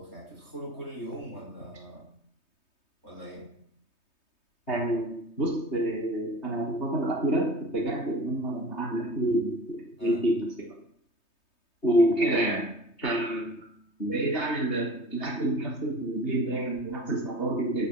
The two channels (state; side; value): late; right; 3.2 ms